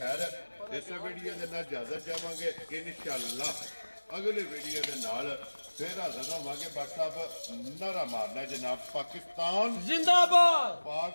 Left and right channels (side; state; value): both; inverted; correlation -1.00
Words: ਇਸ ਵੀਡੀਓ ਦੇ ਨਾਲ ਇਜਾਜ਼ਤ ਚਾਹਾਂਗੇ ਇਨਸ਼ਾਅੱਲਾ ਅਗਲੇ ਵੀਡੀਓ ਦੇ ਨਾਲ ਫਿਰ ਹਾਜ਼ਰ ਹੋਵਾਂਗੇ। WhatsApp ਨਾਰਾ ਮਾਰਨਾ ਜਨਾਬ। ਪਾਕਿਸਤਾਨ ਜ਼ਿੰਦਾਬਾਦ,